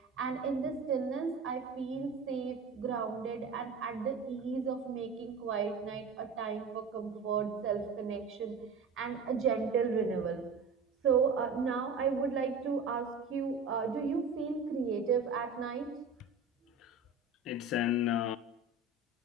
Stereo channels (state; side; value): quieter; left; 4.0 dB